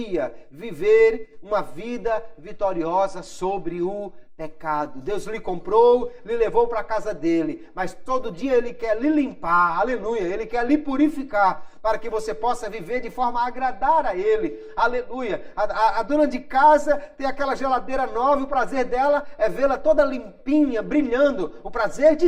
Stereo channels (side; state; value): both; identical; correlation 1.00